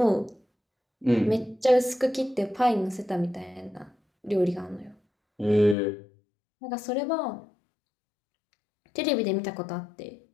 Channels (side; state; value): right; drops out; at 5.8 s